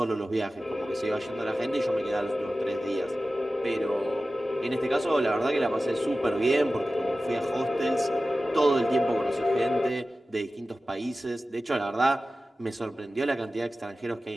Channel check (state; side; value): normal; both; correlation 0.95